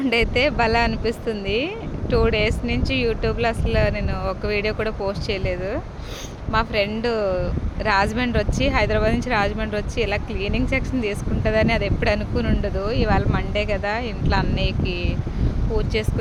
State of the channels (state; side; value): identical; both; correlation 1.00